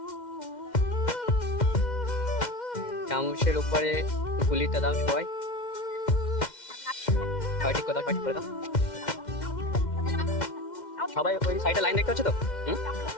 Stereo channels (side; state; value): right; late; 2.1 ms